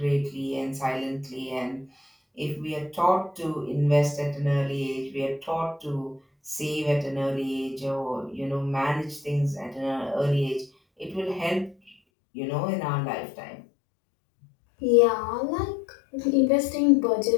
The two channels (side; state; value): right; drops out; at 12.0 s